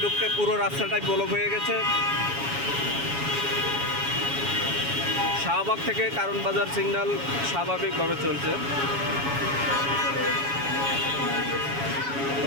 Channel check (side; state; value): left; late; 7.2 ms